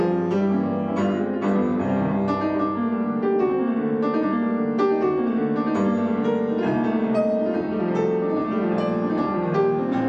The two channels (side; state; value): both; identical; correlation 1.00